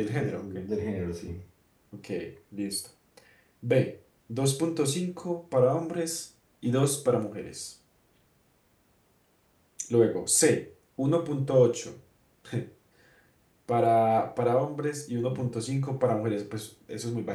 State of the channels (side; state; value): both; identical; correlation 1.00